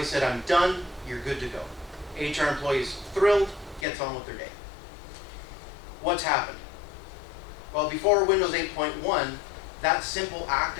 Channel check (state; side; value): drops out; right; at 3.9 s